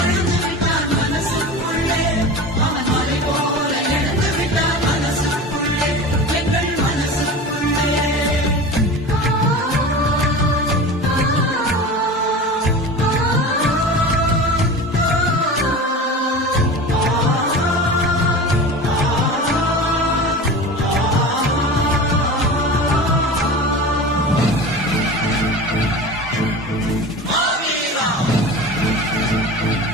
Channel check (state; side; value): normal; both; correlation 0.33